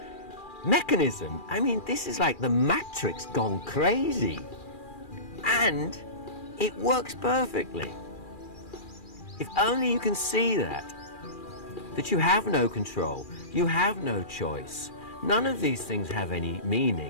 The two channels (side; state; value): right; late; 2.4 ms